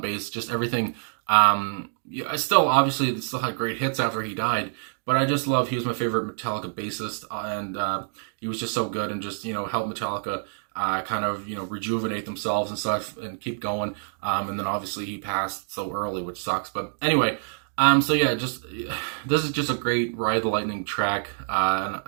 bass. Just everything. Yeah, I still obviously still had great hits after he died, but I just love. He was my favorite Metallica bassist, and he was just so good and just helped Metallica kind of rejuvenate themselves and stuff and keep going. And then obviously he passed so early, which sucks. But anyway. So yeah, just this is just a great Ride the Lightning track, and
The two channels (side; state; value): left; silent; 59 dB below the other